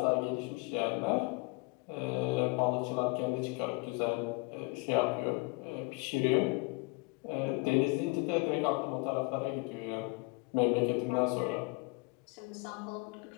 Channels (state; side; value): quieter; right; 27.8 dB